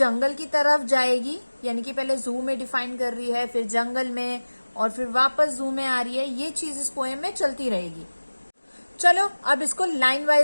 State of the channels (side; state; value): both; inverted; correlation -1.00